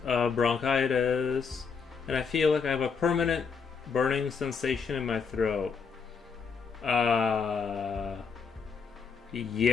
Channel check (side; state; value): right; quieter; 5.7 dB